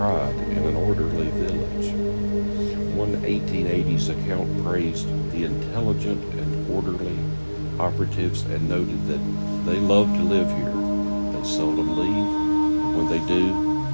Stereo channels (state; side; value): inverted; both; correlation -1.00